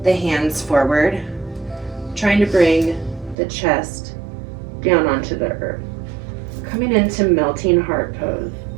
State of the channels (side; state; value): left; drops out; at 3.4 s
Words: the hands forward, trying to bring the chest down onto the earth. Coming into melting heart pose.